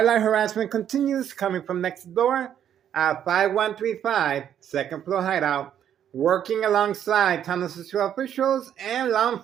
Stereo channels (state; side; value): quieter; left; 9.7 dB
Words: light harassment continues, coming from next door. 5135, second floor hideout, working alongside town officials and law